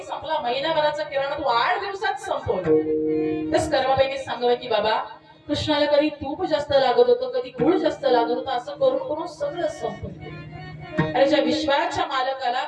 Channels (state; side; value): identical; both; correlation 1.00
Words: संपला, महिनाभराचा किराणा तू 8 दिवसात संपवलं. तस कर्माबाईने सांगावं की बाबा, कृष्णाला कधी तूप जास्त लागत होतं, कधी गुळ जास्त लागत होतं, असं करून करून सगळं संपवलं. अरे ज्या विश्वाच्या मालकाला